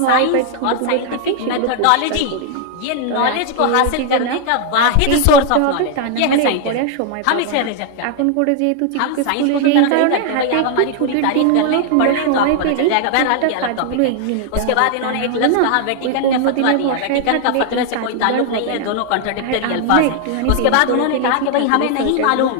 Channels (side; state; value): both; different; correlation 0.00